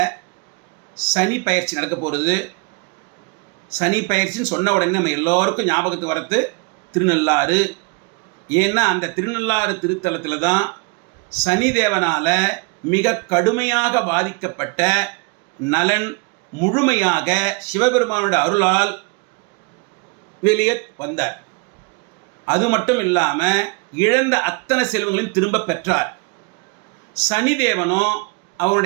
சனி பயிற்சி நடக்க போகிறது. சனி பயிற்சின்னு சொன்ன உடனே நம்ம எல்லோருக்கும் ஞாபகத்துக்கு வரது திருநள்ளாறு. ஏன்னா அந்த திருநள்ளாறு திருத்தலத்தில் தான் சனி தேவனால் மிக கடுமையாக பாதிக்கப்பட்ட நலன் முழுமையாக சிவபெருமானோட அருளால் வெளியே வந்தார். அது மட்டும் இல்லாமல் இழந்த அத்தனை செல்வங்களையும் திரும்ப பெற்றார். சனிதேவனோ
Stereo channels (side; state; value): left; quieter; 30.6 dB